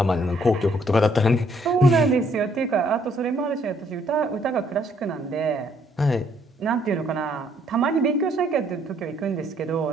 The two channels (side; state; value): both; normal; correlation 0.67